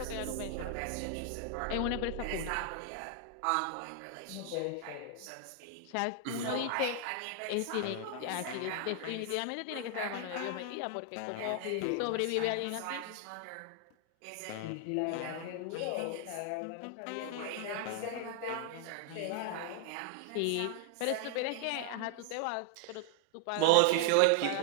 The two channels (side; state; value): both; different; correlation 0.00